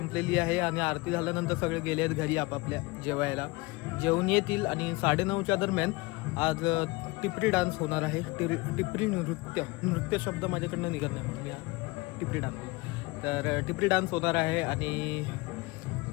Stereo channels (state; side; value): quieter; right; 23.0 dB